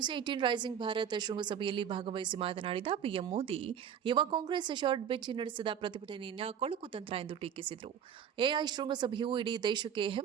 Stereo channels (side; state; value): left; quieter; 8.5 dB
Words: 18 ರೈಸಿಂಗ್ ಭಾರತ್ ಶೃಂಗಸಭೆಯಲ್ಲಿ ಭಾಗವಹಿಸಿ ಮಾತನಾಡಿದ ಪಿಎಂ ಮೋದಿ, ಯುವ ಕಾಂಗ್ರೆಸ್ ಶಾರ್ಟ್ ಬೆಂಚ್ ನಡೆಸಿದ ಪ್ರತಿಭಟನೆಯನ್ನು ಕೊಳಕು ತಂತ್ರ ಎಂದು ಟೀಕಿಸಿದರು. ಎಐ ಶೃಂಗಸಭೆಯು ಇಡೀ ದೇಶಕ್ಕೆ